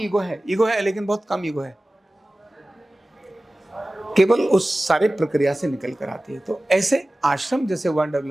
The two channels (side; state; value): both; normal; correlation 0.97